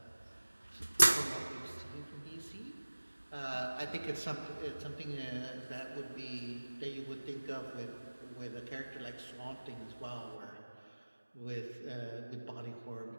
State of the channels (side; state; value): both; inverted; correlation -1.00